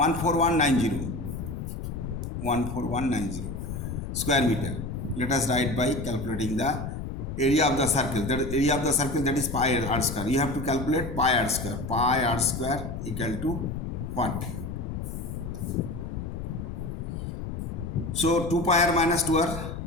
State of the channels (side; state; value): left; noise; rumble, 6 dB below the sound